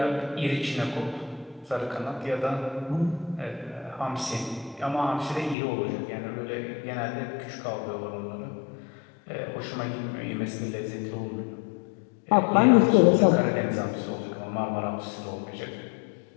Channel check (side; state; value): right; drops out; at 5.6 s